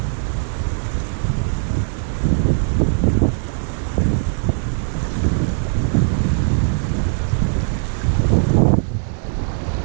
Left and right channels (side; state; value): left; silent; 66 dB below the other